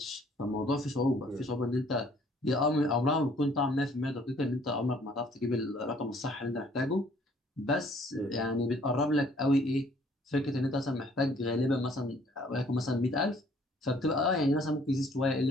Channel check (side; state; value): both; normal; correlation 0.60